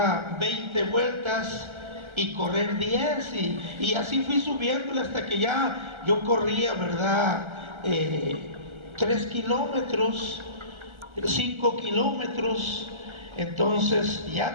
20 vueltas y correr 10 y así fui subiéndole hasta que ya yo corría, ¿verdad? 3 kilómetros, 5 kilómetros. Entonces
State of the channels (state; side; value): late; left; 1.3 ms